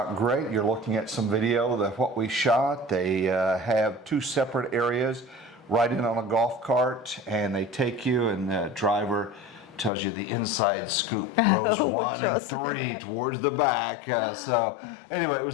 great. You're looking at some video of what we shot. They have two separate areas right in on a golf cart, and they take you, and the driver tells you the inside scoop, rows 1 and 3 towards the back. So anyway, it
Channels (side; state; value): right; drops out; at 9.9 s